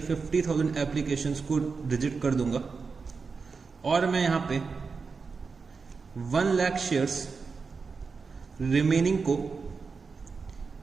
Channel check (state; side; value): quieter; left; 4.9 dB